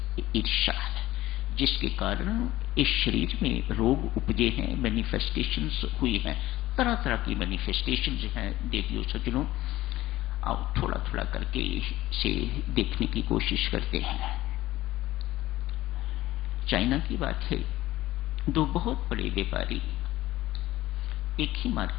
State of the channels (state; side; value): quieter; right; 16.2 dB